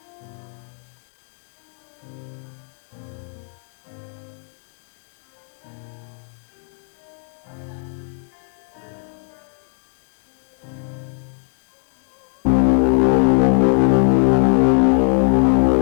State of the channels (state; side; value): silent; right; 56 dB below the other